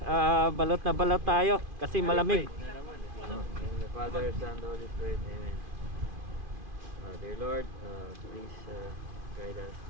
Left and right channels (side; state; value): left; late; 2.5 ms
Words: Balot na balot tayo kasi malamig. In the Father, Son, and Holy Spirit, Amen. Dear Lord, please